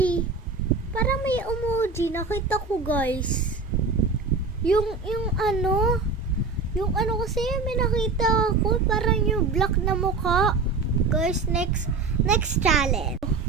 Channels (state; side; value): quieter; left; 4.2 dB